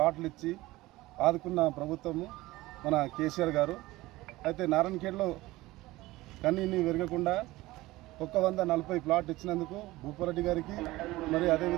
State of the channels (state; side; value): quieter; left; 18.8 dB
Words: ఇచ్చి ఆదుకున్న ప్రభుత్వము మన కేసీఆర్ గారు. అయితే నారాయణఖేడ్లో కన్నీని వెరగకుండా 140 ప్లాట్ ఇచ్చినందుకు భూపారెడ్డి గారికి మరి